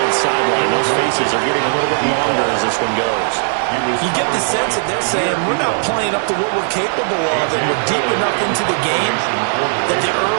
the sideline, those faces are getting a little bit longer as this one goes. You get the sense that they're saying we're not playing up to what we're capable of, and we're deep enough into the game that the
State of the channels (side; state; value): left; silent; digital silence